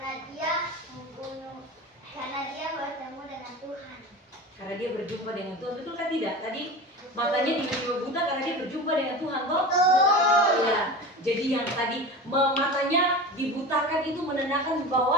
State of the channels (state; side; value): normal; both; correlation 0.31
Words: dia bertemu dengan Tuhan. Karena dia berjumpa dengan Tuhan, betul kan tidak? Tadi matanya tiba-tiba buta karena dia berjumpa dengan Tuhan, toh? Ya. Jadi yang tadi matanya dibutakan itu menandakan